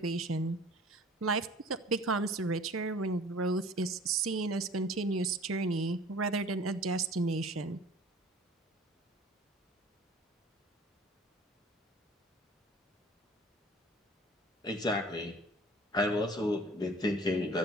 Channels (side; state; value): both; normal; correlation 0.47